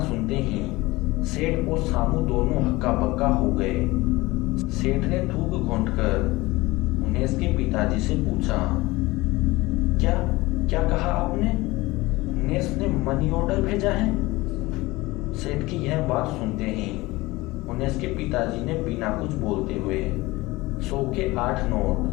सुनते ही सेठ और सामू दोनों हक्का बक्का हो गए। सेठ ने थूक घोंटकर हुनेस के पिताजी से पूछा, क्या क्या कहा आपने? हुनेस ने मनी ऑर्डर भेजा है? सेठ की यह बात सुनते ही हुनेस के पिताजी ने बिना कुछ बोलते हुए 100 के 8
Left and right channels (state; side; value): quieter; right; 20.7 dB